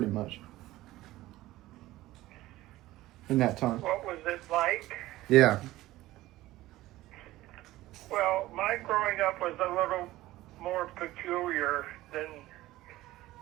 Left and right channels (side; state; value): left; quieter; 16.7 dB